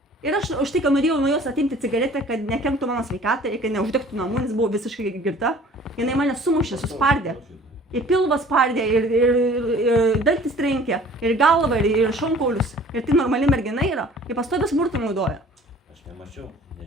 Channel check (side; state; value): both; normal; correlation 0.50